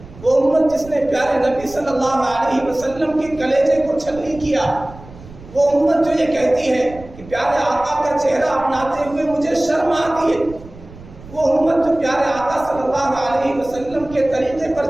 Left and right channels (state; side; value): noise; right; rumble, 18 dB below the sound